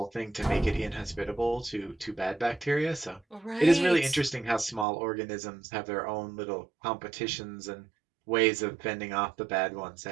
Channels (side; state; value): left; drops out; at 4.9 s